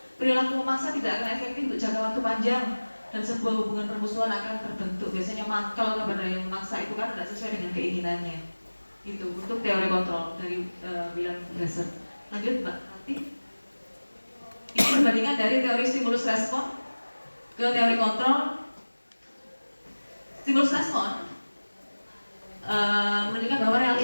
Perilaku memaksa tidak akan efektif untuk jangka waktu panjang, dan sebuah hubungan permusuhan akan terbentuk. Biasanya mangkal kepada yang memaksa itu kan tidak sesuai dengan keinginannya. Itu untuk teori kontrol dari William Glasser. Lanjut Mbak Nanti. Ini perbandingan dari teori stimulus respon ke teori kontrol. Stimulus respon menunjukkan bahwa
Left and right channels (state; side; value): inverted; both; correlation -1.00